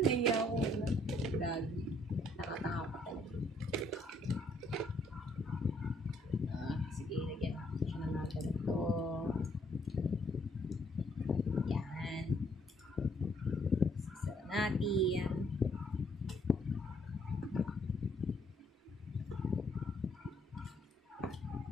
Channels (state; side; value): normal; both; correlation 0.68